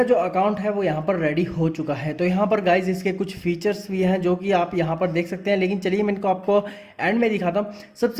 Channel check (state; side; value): identical; both; correlation 1.00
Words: जो अकाउंट है वो यहाँ पर रेडी हो चुका है। तो यहाँ पर गाइज इसके कुछ फीचर्स भी हैं जो कि आप यहाँ पर देख सकते हैं। लेकिन चलिए मैं इनको आपको एंड में दिखाता हूँ।